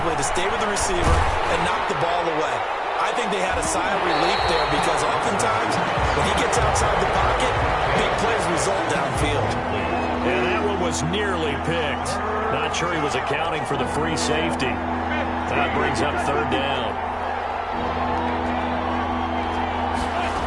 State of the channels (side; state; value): both; identical; correlation 1.00